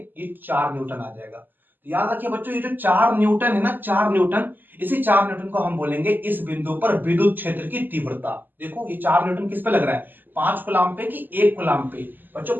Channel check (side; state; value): left; late; 0.090 ms